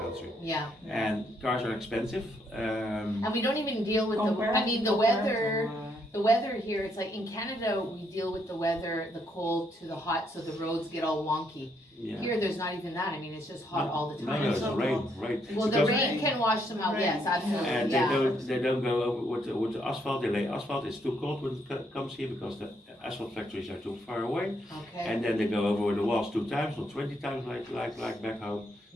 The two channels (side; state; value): both; normal; correlation 0.74